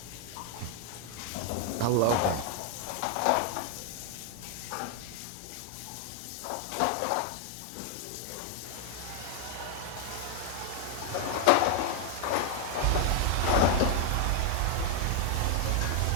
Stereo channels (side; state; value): both; different; correlation 0.00